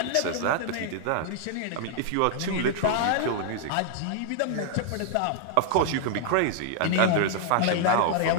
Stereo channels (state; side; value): different; both; correlation -0.01